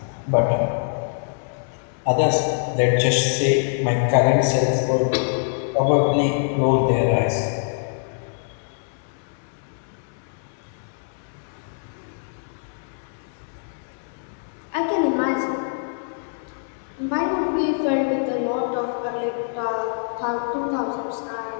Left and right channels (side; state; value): right; silent; 63 dB below the other